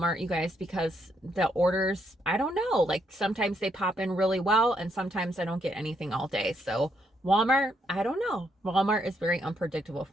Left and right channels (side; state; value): both; normal; correlation 0.75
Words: you guys, because the orders, I don't know, like sometimes they pop in really well and sometimes I don't get anything all day. So Walmart, I don't know. Walmart is very unpredictable